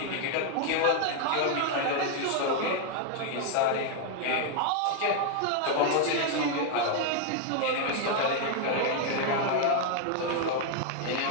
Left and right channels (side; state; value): both; different; correlation 0.00